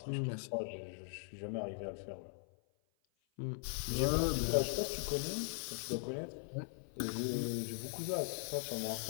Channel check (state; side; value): silent; right; 51 dB below the other